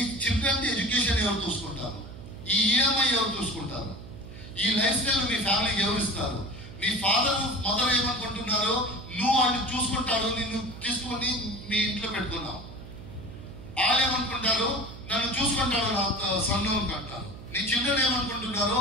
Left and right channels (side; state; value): right; noise; hum, 14 dB below the sound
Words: చిల్డ్రన్ ఎడ్యుకేషన్ ఎవరు చూసుకుంటారు? ఈ ఈఎంఐ ఎవరు చూసుకుంటారు? ఈ లైఫ్ స్టైల్ మీ ఫ్యామిలీకి ఎవరు ఇస్తారు? మీ ఫాదర్ మదర్ ఏమనుకుంటున్నారో నువ్వు వాళ్ళు చూసుకుంటారు, నిన్ను తీసుకొని మీ ఇంట్లో పెట్టుకున్నావు. వాళ్ళు ఏమనుకుంటారు, నన్ను చూసుకుంటారు, నా సన్ను అంటారు. నీ చిల్డ్రన్ ఏమనుకుంటున్నారో,